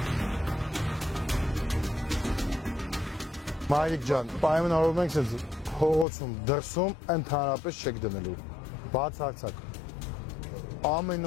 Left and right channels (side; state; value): right; drops out; at 6.1 s